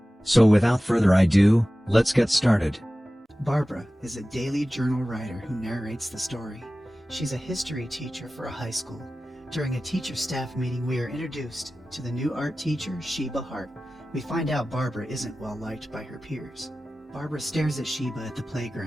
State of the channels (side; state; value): both; normal; correlation 0.96